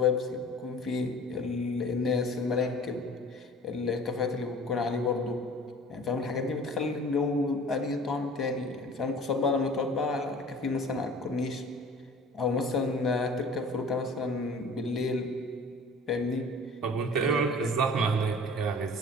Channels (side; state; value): both; normal; correlation 0.44